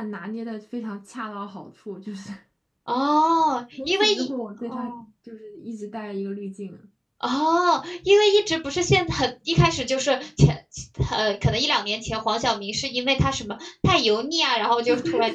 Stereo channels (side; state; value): both; identical; correlation 1.00